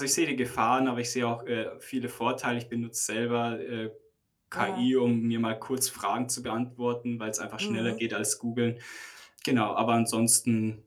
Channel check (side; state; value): both; identical; correlation 1.00